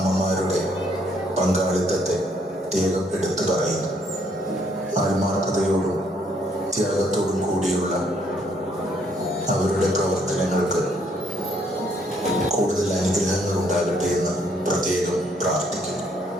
പങ്കാളിത്തത്തെ പ്രത്യേകം എടുത്തു പറയുന്നു. ആത്മാർത്ഥതയോടും ത്യാഗത്തോടും കൂടിയുള്ള അവരുടെ പ്രവർത്തനങ്ങൾക്ക് കൂടുതൽ അനുഗ്രഹങ്ങൾ ഉണ്ടാകട്ടെ എന്ന് പ്രത്യേകം പ്രാർത്ഥിക്കുന്നു.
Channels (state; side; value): normal; both; correlation 0.68